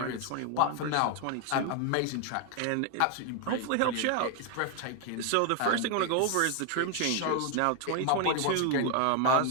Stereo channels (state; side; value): different; both; correlation 0.01